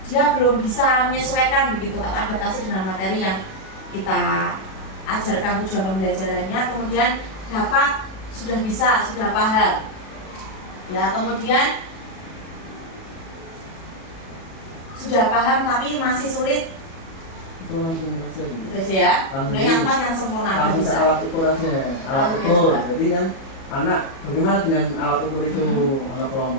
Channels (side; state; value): right; late; 37 ms